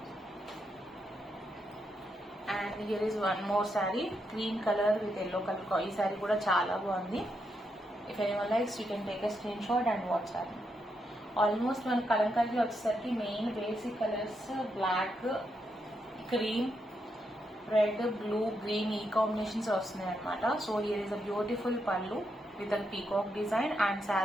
And here is one more sari green colour with yellow colour. ఈ శారీ కూడా చాలా బాగుంది. If anyone likes you can take a screen shot and WhatsApp. Almost మన కలంకారీ వచ్చేసరికి main basic colours black, cream, red, blue, green ఈ combinations వస్తున్నాయి అనమాట. So here is a beautiful pallu with a peacock design. And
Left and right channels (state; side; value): normal; both; correlation 0.81